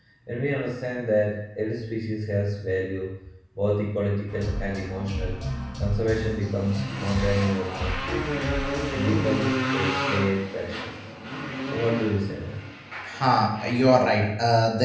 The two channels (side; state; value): both; identical; correlation 1.00